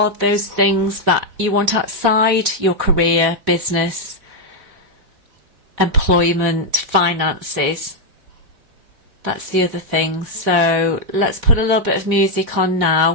those things that you want outside your career, business, employment, finances. That's the other thing. So let's put a little bit of music on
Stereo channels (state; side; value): late; left; 3.9 ms